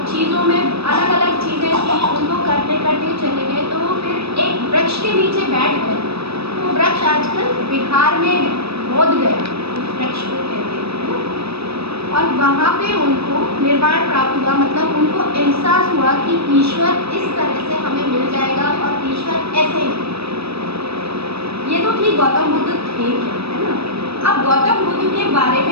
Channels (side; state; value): left; late; 0.78 ms